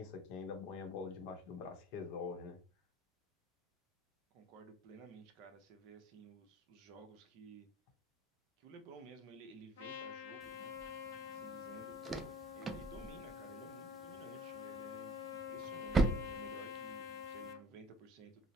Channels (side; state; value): both; normal; correlation 0.48